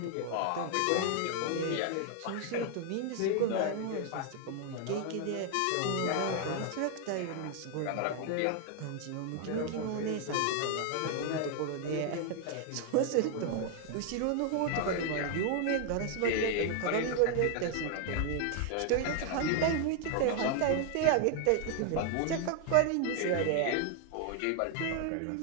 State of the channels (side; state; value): both; different; correlation 0.00